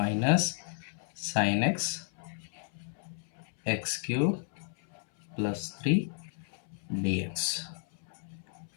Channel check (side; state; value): right; silent; 56 dB below the other